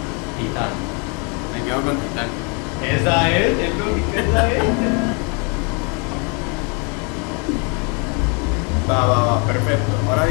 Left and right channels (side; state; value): right; quieter; 34.5 dB